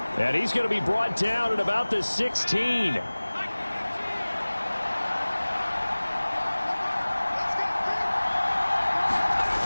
And he's going to be brought down at about the 16.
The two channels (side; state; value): both; inverted; correlation -1.00